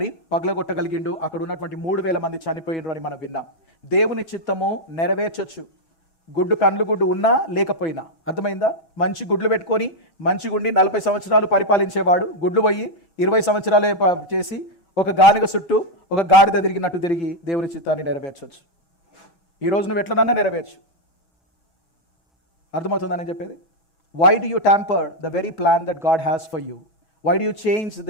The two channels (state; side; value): late; right; 6.1 ms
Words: పగలగొట్టగలిగిండు. అక్కడ ఉన్నటువంటి 3,000 మంది చనిపోయిండ్రు అని మనం విన్నాం. దేవుని చిత్తము నెరవేర్చొచ్చు, కండ్లు గుడ్డు ఉన్నా లేకపోయినా. అర్థమైందా? మంచి గుడ్లు పెట్టుకొని మంచి గుండి 40 సంవత్సరాలు పరిపాలించేవాడు గుడ్లు పోయి 20 సంవత్సరాలే చేసి ఒక గానుగ చుట్టూ ఒక గాడిద తిరిగినట్టు తిరిగి దేవుని చిత్తాన్ని నెరవేర్చవచ్చు. ఈ రోజు నువ్వు ఎట్లనన్నా నెరవేర్చు. అర్థమవుతుందని చెప్పేది? Why do you tamper the very plan that God has for you? Why do you change